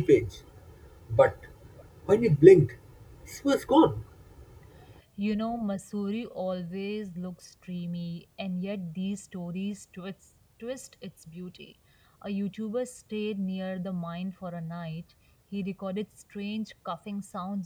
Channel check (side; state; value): both; identical; correlation 1.00